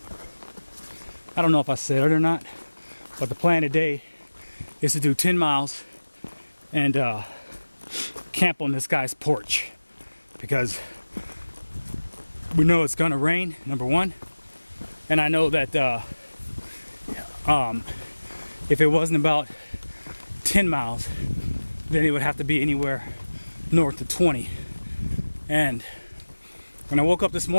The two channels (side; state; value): both; inverted; correlation -1.00